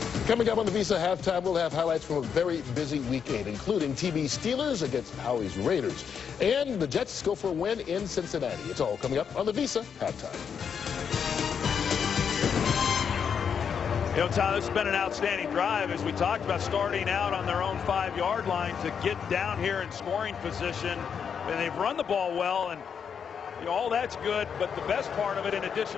Coming up on the Visa halftime, we'll have highlights from a very busy weekend, including TB Steelers against Howie's Raiders. And the Jets go for a win in Cincinnati. It's all coming up on the Visa halftime. You know, Tom, this has been an outstanding drive, as we talked about, starting out on their own 5-yard line to get down here in scoring position. And they've run the ball well, and you know, all that's good. But the best part of it, in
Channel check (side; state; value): right; quieter; 7.1 dB